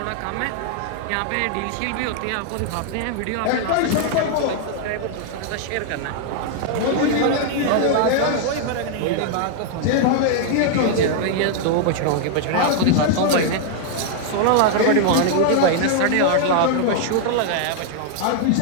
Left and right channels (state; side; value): different; both; correlation 0.00